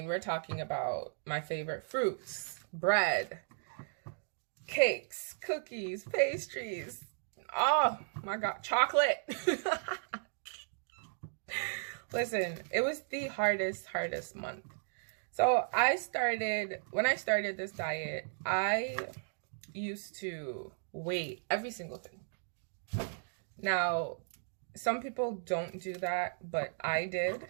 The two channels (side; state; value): left; silent; digital silence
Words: we're talking about my favorite fruits, bread, cakes, cookies, pastries. Oh my God, chocolate. Listen, it was the hardest month. So when I started this diet, I used to weigh every single thing. Now, some people don't do that, but I did.